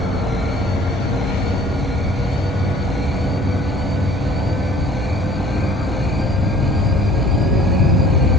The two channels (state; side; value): normal; both; correlation 0.52